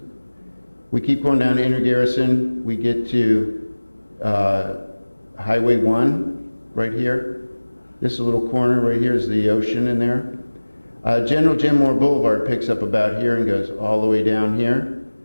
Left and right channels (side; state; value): both; inverted; correlation -1.00